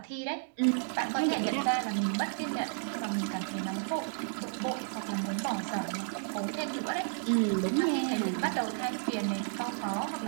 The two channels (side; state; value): left; silent; digital silence